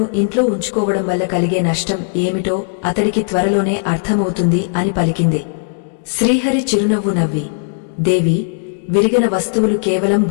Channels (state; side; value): silent; right; digital silence